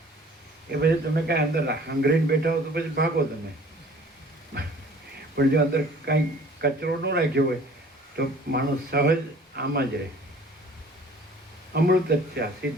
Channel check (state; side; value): normal; both; correlation 0.50